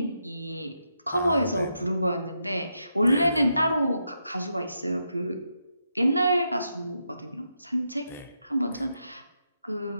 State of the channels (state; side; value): inverted; both; correlation -0.83